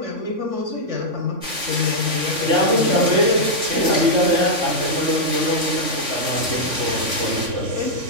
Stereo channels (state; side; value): late; left; 3.5 ms